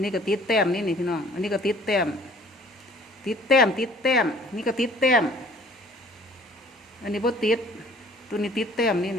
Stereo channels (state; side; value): normal; both; correlation 0.53